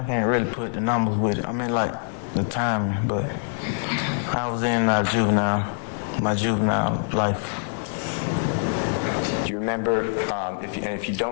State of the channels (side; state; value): right; silent; 56 dB below the other